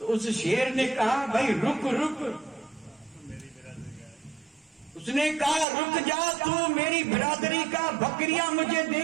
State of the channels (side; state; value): left; drops out; at 5.7 s